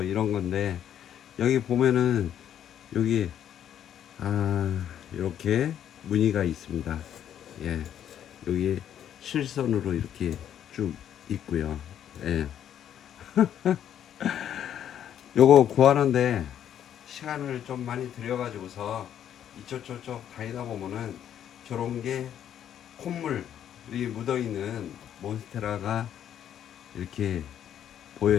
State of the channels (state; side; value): quieter; right; 10.0 dB